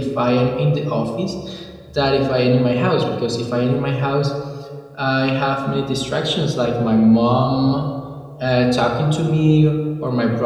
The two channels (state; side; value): identical; both; correlation 1.00